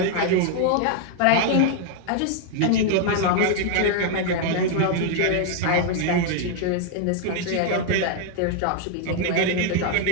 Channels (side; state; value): both; different; correlation 0.00